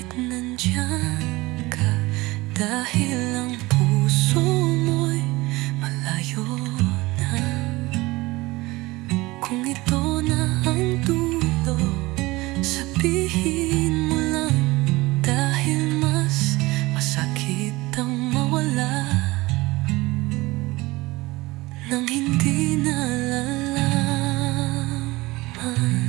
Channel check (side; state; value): left; quieter; 21.0 dB